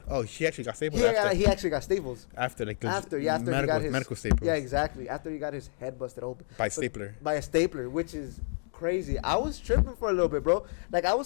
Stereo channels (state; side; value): silent; right; 58 dB below the other